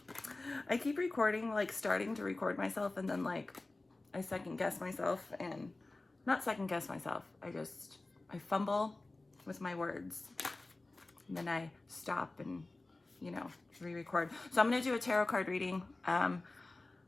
recording, like starting to record myself, and then like I second guess myself, and not second guess myself. I fumble with my words, and then I stop and, you know, re-record. So I'm gonna do a tarot card reading. I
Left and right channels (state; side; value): quieter; right; 3.1 dB